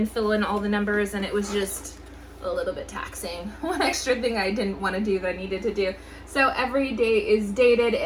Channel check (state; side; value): identical; both; correlation 1.00